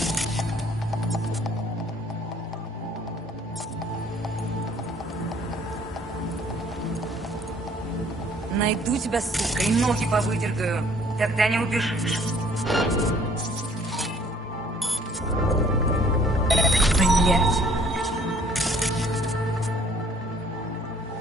Найду тебя, сука, и ноги повыдергаю. Тогда не убежишь. Блять.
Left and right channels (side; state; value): both; normal; correlation 0.58